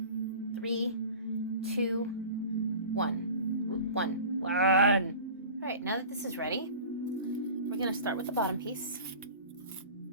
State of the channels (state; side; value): inverted; both; correlation -0.39